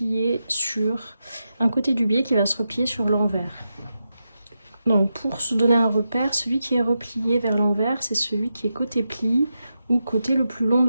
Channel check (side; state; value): both; inverted; correlation -0.88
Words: sur... Un côté du biais qui va se replier sur l'envers. Donc pour se donner un repère, celui qui est replié vers l'envers, c'est celui qui est côté pli ou côté le plus long